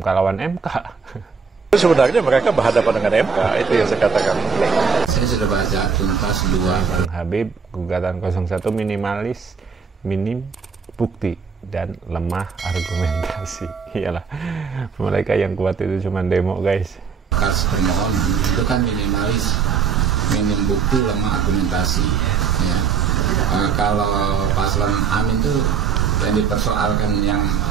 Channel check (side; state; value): left; quieter; 6.0 dB